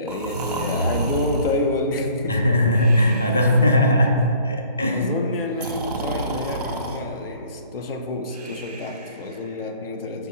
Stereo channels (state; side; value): inverted; both; correlation -0.55